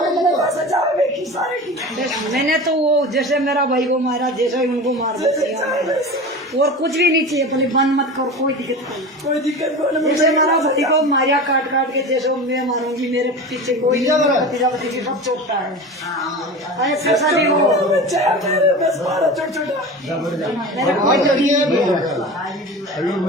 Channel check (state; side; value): normal; both; correlation 0.31